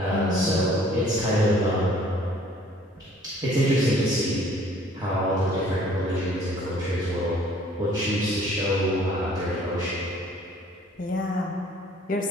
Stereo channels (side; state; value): both; normal; correlation 0.56